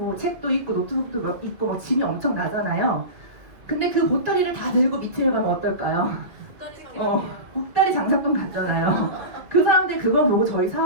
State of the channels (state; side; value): late; left; 2.1 ms